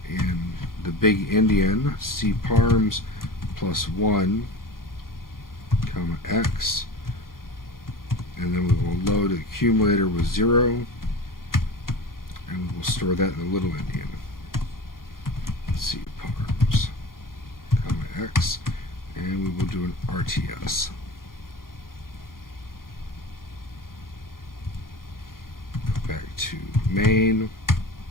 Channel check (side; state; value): right; late; 0.91 ms